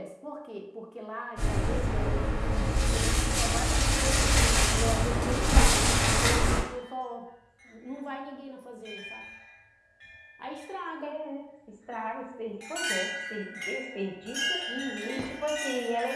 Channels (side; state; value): both; identical; correlation 1.00